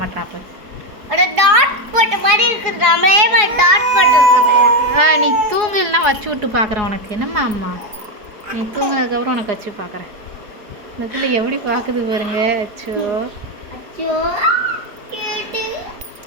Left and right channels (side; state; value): left; late; 4.7 ms